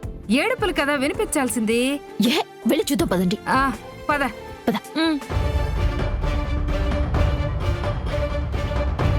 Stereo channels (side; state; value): both; identical; correlation 1.00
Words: ఏడుపులు కదా వినిపించాల్సింది. వెళ్ళి చూద్దాం పదండి. పద పద.